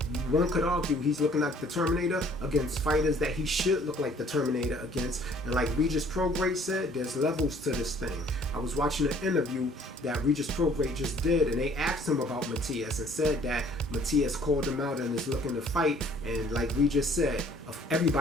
one could argue he's looking like the Terminator against fighters that he should look like the Terminator against. And like Regis Prograis said, there's levels to this thing. I was watching an interview that Regis Prograis just did, and they asked him about Matias and said that Matias called him out and is looking to fight. And like Regis said,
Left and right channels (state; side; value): normal; both; correlation 0.57